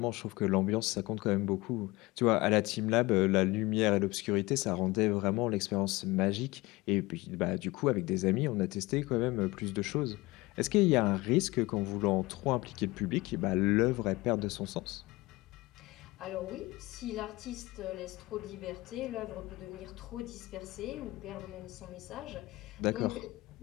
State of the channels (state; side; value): quieter; right; 21.2 dB